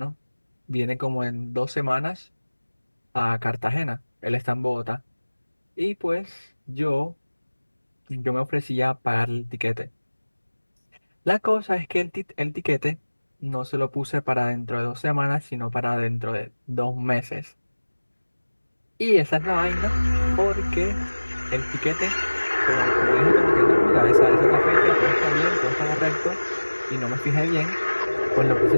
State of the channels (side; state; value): both; inverted; correlation -1.00